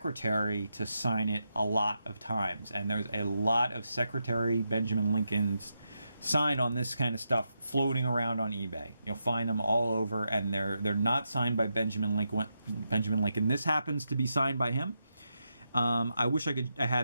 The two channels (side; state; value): both; inverted; correlation -0.85